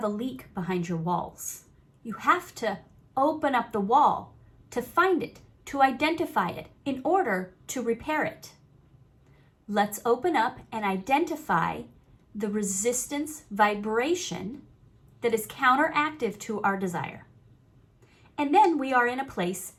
a leak behind your walls. You have to open up the wall to find it, to identify it, in order to repair it. Let's open up and identify the resistance vibration that is counteractive to our desire. And then we are in a place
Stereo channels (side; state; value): both; identical; correlation 1.00